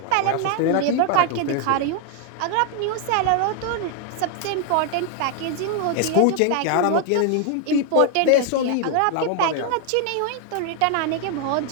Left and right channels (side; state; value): both; different; correlation 0.00